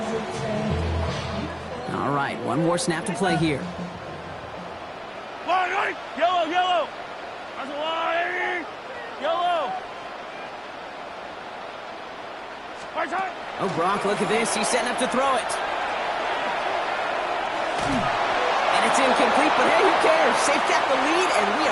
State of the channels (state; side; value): identical; both; correlation 1.00